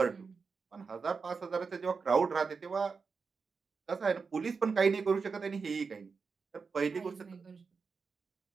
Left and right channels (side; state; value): left; quieter; 5.0 dB